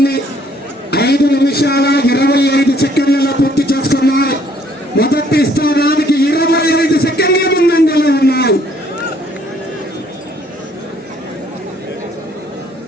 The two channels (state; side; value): normal; both; correlation 0.64